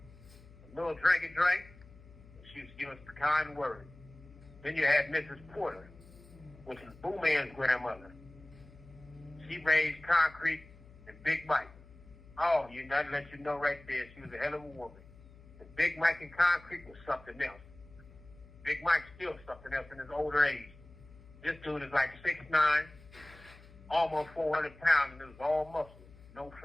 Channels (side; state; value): left; noise; hum, 22 dB below the sound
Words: a little drink, and she used to give us the kind word. Then you had Mrs. Porter, which is Boo Man's grandmother. She raised Concrete and Big Mike. Oh, you know, to let you know right there, she was a hell of a woman. The Big Mike and Concrete was something else. Big Mike's still something else in his older age. This dude is like 6'9", almost 400 pounds, and it was all muscle, no